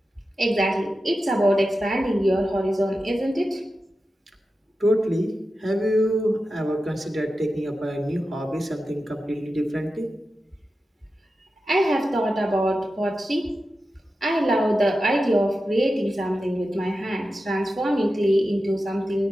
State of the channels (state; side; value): normal; both; correlation 0.92